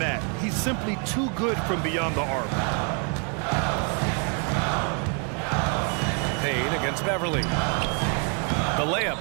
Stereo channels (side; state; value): left; quieter; 39.5 dB